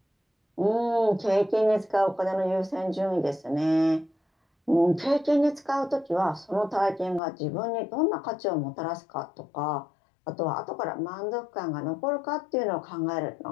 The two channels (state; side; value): drops out; right; at 7.2 s